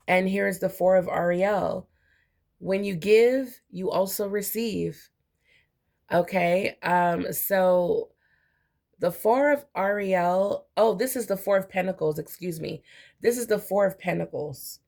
And here's the Four of Ariel. When you give, you also receive. Okay. So the Four of Ariel, oh, this is the Four of Pentacles, excuse me. This is the Four of Pentacles,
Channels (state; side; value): identical; both; correlation 1.00